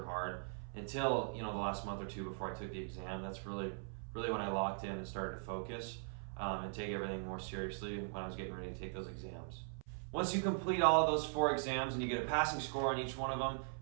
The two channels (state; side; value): silent; left; 51 dB below the other